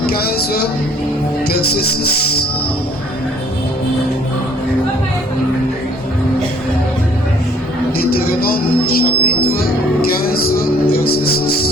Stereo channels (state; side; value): normal; both; correlation 0.59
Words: 15, verset 6. Deutéronome, chapitre 15, verset